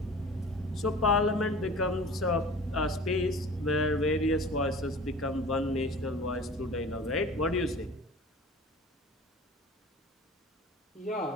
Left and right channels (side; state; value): both; normal; correlation 0.41